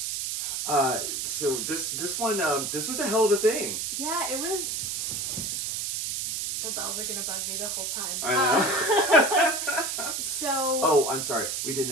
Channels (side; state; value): right; noise; hiss, 2 dB below the sound